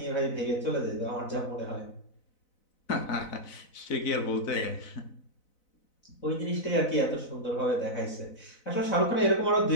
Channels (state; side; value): late; right; 4.0 ms